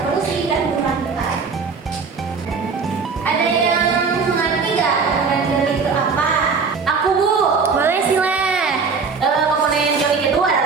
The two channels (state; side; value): quieter; left; 5.1 dB